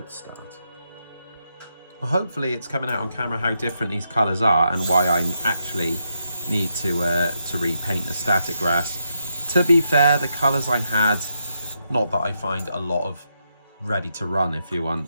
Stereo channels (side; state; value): both; inverted; correlation -0.82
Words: start. Well, hopefully it's coming out on camera how different these colours are and why I actually need to repaint the static grass. To be fair, the colours I had, not that I find a lot of ready to run, if you